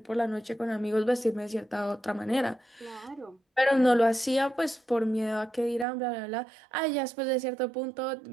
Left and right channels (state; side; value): drops out; left; at 5.9 s